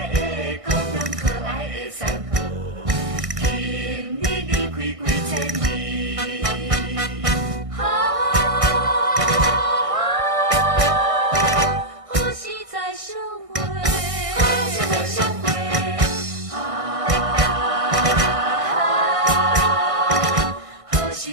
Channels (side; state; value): left; late; 1.6 ms